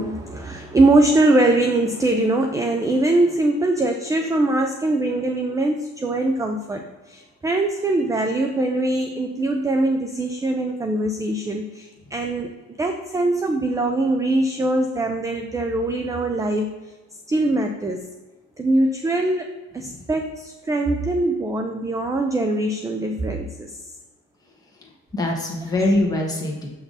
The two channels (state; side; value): normal; both; correlation 0.72